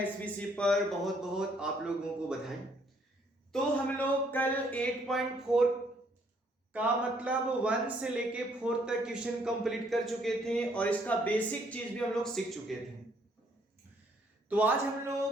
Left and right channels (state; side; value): normal; both; correlation 0.67